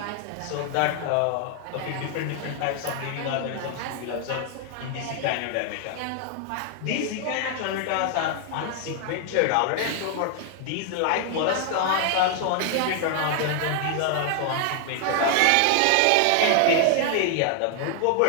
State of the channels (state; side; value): different; both; correlation 0.00